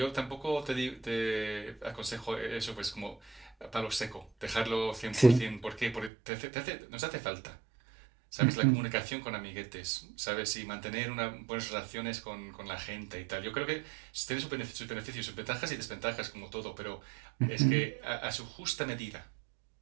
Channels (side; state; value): left; drops out; at 6.1 s